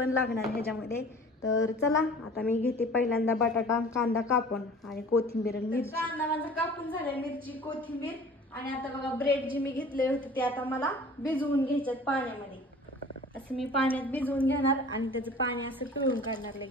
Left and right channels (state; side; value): normal; both; correlation 0.45